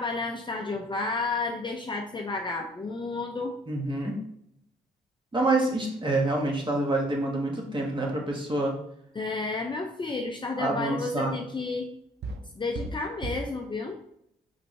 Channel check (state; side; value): normal; both; correlation 0.58